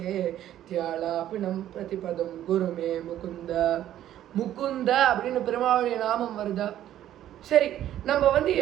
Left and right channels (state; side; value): quieter; left; 12.1 dB